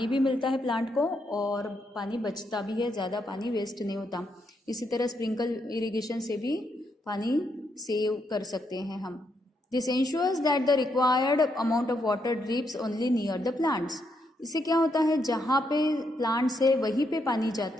भी मिलता है प्लांट को और पानी बचता भी है, ज़्यादा पानी वेस्ट नहीं होता. इसी तरह स्प्रिंकल इरिगेशन से भी पानी सेव कर सकते हैं हम. This ensures that the required amount of water drips only near the plants. इससे क्या होता है, जहाँ पे प्लांट्स है वहीं पे पानी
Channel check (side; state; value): both; normal; correlation 0.78